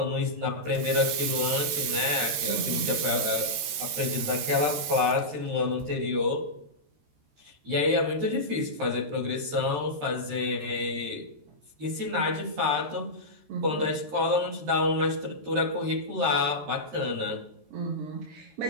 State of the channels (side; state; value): left; late; 13 ms